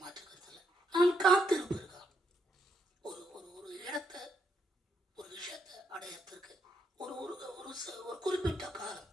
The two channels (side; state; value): both; normal; correlation 0.77